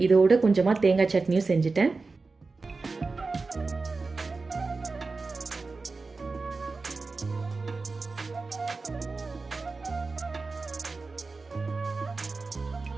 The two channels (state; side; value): quieter; left; 4.0 dB